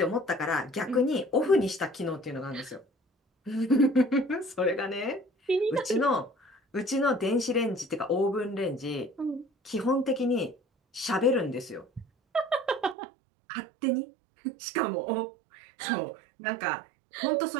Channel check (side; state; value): left; drops out; at 13.0 s